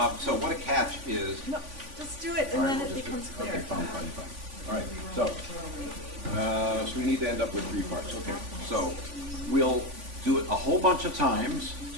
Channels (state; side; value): late; left; 3.5 ms